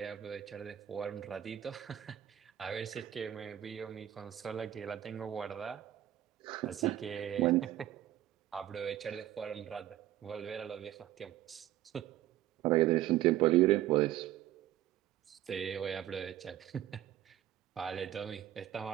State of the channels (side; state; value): left; quieter; 12.7 dB